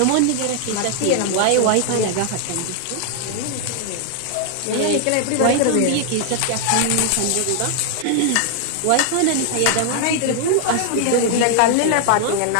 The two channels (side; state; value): both; different; correlation 0.00